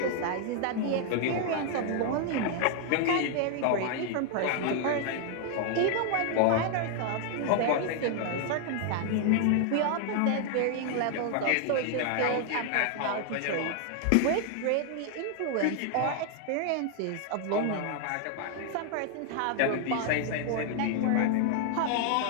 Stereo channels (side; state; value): both; different; correlation 0.00